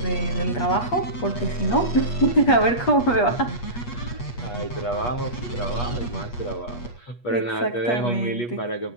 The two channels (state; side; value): late; right; 8.3 ms